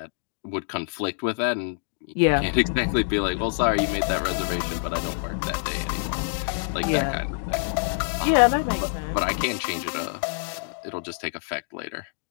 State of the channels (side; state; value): right; silent; digital silence